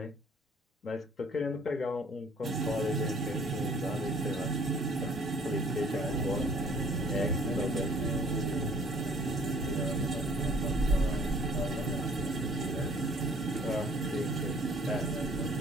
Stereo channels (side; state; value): both; normal; correlation 0.56